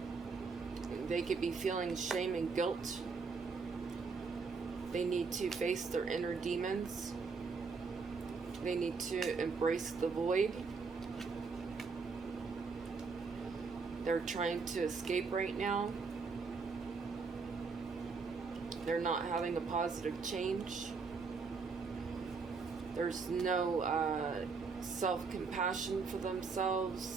They could be feeling shame and guilt. They need to face their inner demons. They need to embrace the void. They're trying to escape right now. They're not having a positive change. There's no self-compassion for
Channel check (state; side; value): quieter; left; 4.8 dB